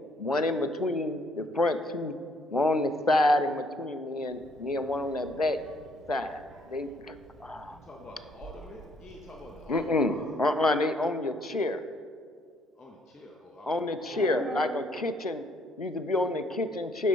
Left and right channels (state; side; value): normal; both; correlation 0.66